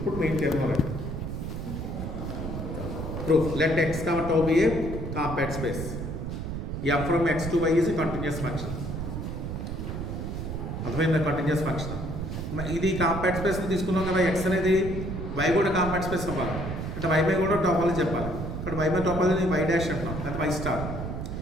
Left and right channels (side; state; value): right; noise; rumble, 5 dB below the sound